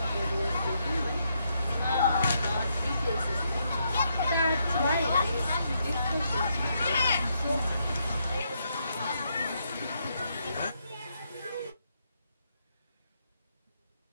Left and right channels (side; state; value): both; inverted; correlation -0.78